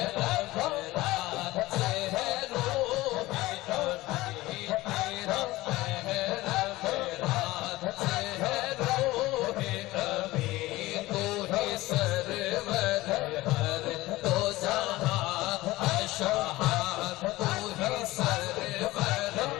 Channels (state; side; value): quieter; right; 18.6 dB